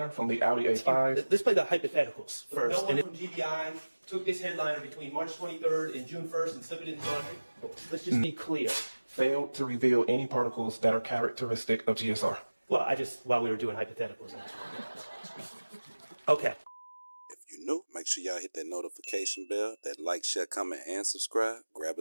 from the Audi A5. Let's play the hypotheticals first. No one from GBI took this headliner between March 23rd and June 1st and slipped it in the laundry. Let's just be clear. Failed to reveal any particles that are characteristic of GSR. Well, while we were doing hypotheticals. Okay. If you're new, make sure y'all hit that notification bell, that like, share, comment, and subscribe. Grab a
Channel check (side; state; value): both; inverted; correlation -1.00